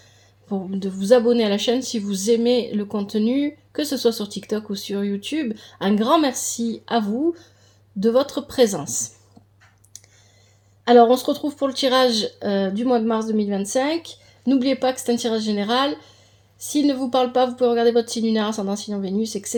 de vous abonner à la chaîne si vous aimez le contenu, que ce soit sur TikTok ou sur YouTube. Un grand merci à vous de votre présence. Alors on se retrouve pour le tirage du mois de mars 2025, n'oubliez pas que c'est un tirage général. S'il ne vous parle pas, vous pouvez regarder votre signe lunaire, ascendant, signe en Vénus,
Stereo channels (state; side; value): identical; both; correlation 1.00